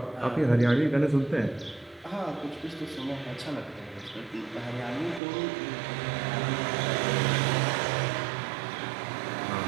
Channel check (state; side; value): drops out; left; at 5.2 s